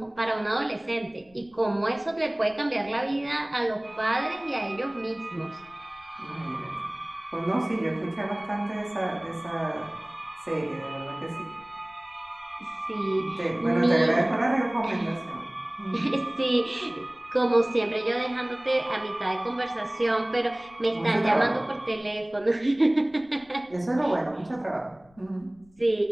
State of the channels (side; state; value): left; noise; rumble, 29 dB below the sound